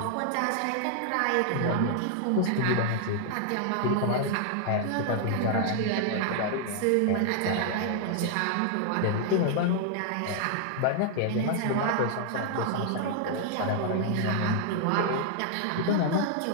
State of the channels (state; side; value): different; both; correlation 0.00